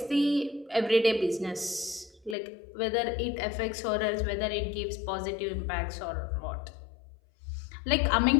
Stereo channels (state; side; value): drops out; right; at 2.4 s